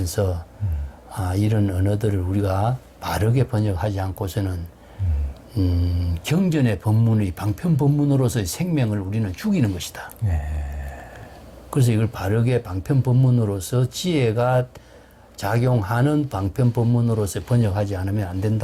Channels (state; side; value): identical; both; correlation 1.00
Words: 이런 언어들을 우리가 바르게 번역하지 않고서는 경전의 법문의 방편 법문으로서의 생명을 우리는 죽이는 것이다. 그래서 이걸 바르게 방편 법문으로서 지혜가 작용하는 방편 법문으로서 번역하지 않으면 안